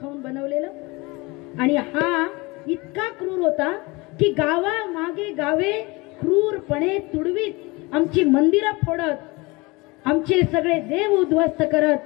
खाऊन बनवलेलं. आणि हा इतका क्रूर होता की गावा मागे गावे क्रूरपणे तुडवीत, आमची मंदिरं फोडत, आमचे सगळे देव उद्ध्वस्त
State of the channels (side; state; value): right; quieter; 24.5 dB